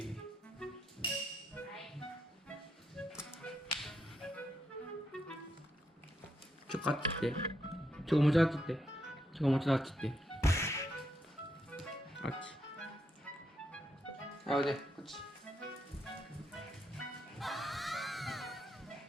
あっち行って。もうちょいあっち行って。もうちょいあっち行って。あっち。おいで、こっち。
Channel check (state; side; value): normal; both; correlation 0.80